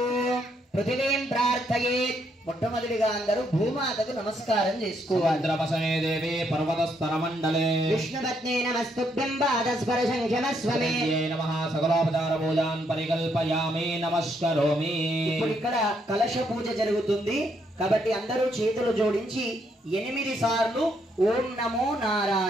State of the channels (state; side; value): normal; both; correlation 0.74